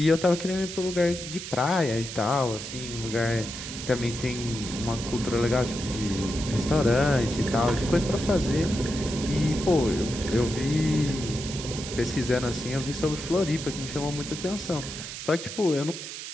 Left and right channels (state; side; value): noise; right; hiss, 9 dB below the sound